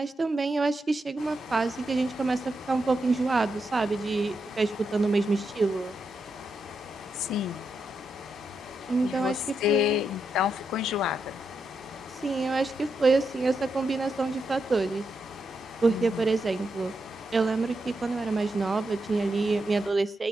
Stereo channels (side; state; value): both; normal; correlation 0.84